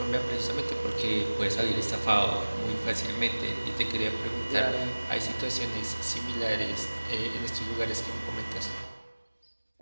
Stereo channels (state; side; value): inverted; both; correlation -1.00